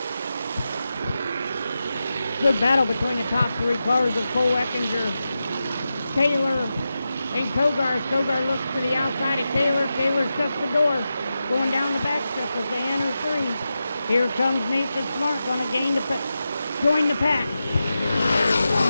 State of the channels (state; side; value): inverted; both; correlation -0.91